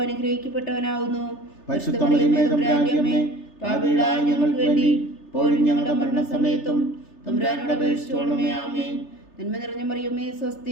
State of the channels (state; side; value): late; right; 3.3 ms